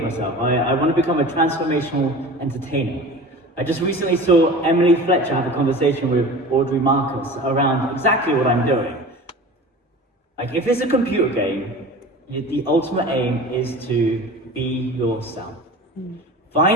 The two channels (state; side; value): normal; both; correlation 0.37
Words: myself. I want to become a transformational entertainer. I just recently saw Emily Fletcher have a conversation with Audrey Marcus around exactly what I'm doing. Like, if it's a computer game, the ultimate aim is to be yourself.